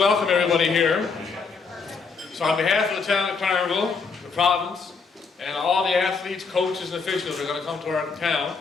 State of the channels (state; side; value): quieter; right; 5.0 dB